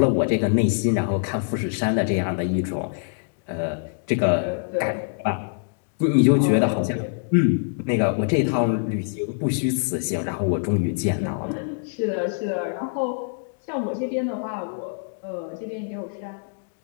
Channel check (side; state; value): right; silent; digital silence